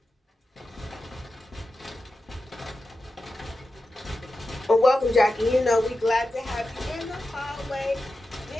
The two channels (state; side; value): normal; both; correlation 0.92